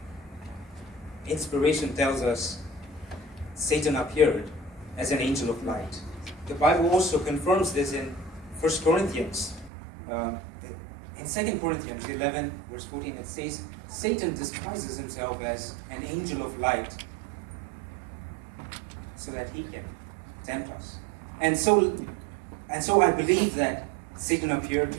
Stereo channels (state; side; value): drops out; left; at 9.7 s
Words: Inspiration tells us Satan appeared as an angel of light. The Bible also confirms this in 1 Corinthians. In 2 Corinthians 11, verse 14, it says, Satan disguises himself as an angel of light so that he can tempt us. And so I believe that Satan appeared